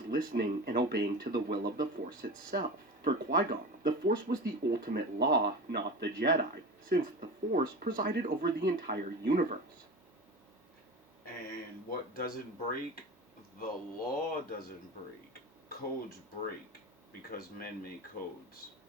listening and obeying to the will of the Force itself. For Qui-Gon, the Force was the ultimate law, not the Jedi, since the Force presided over the entire universe. And what doesn't break, the law doesn't break. Codes break because men make codes.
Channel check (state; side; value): normal; both; correlation 0.30